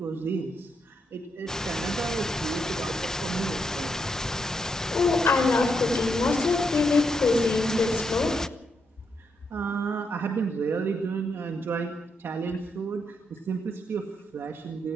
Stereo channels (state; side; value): normal; both; correlation 0.80